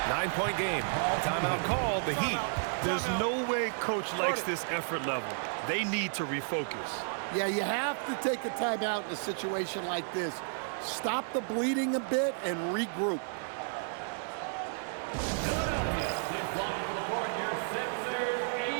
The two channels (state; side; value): silent; left; digital silence